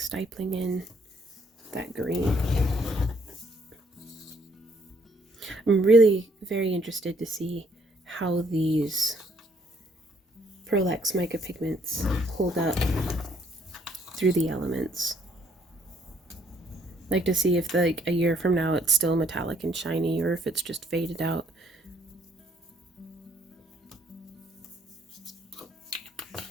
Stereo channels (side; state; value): both; normal; correlation 0.66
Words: stipling in that green. I'm really very interested to see how these Pearl-Ex mica pigments hold up through the elements. Like to see if like a year from now it's still metallic and shiny or if it's just faded out.